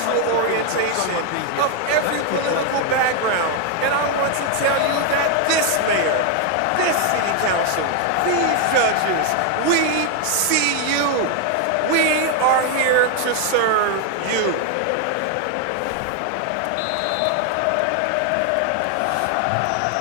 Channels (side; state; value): both; different; correlation 0.00